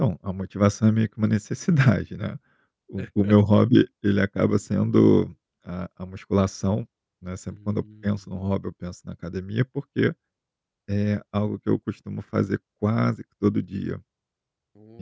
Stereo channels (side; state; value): both; identical; correlation 1.00